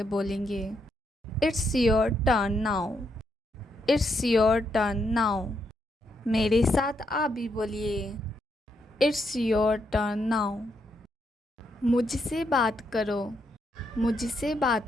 बोलेंगे? It's your turn now. It's your turn now. मेरे साथ आप भी बोलिए। It's your turn now. मुझसे बात करो। मुझसे बात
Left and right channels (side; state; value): both; normal; correlation 0.78